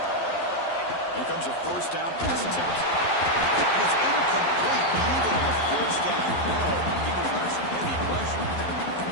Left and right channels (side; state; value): right; late; 11 ms